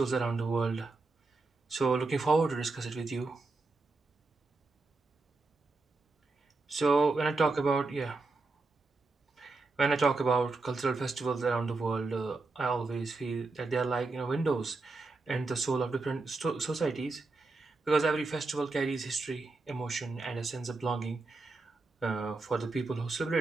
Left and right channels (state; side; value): quieter; left; 3.6 dB